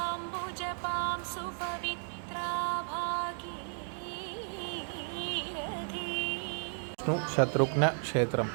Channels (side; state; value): left; silent; 55 dB below the other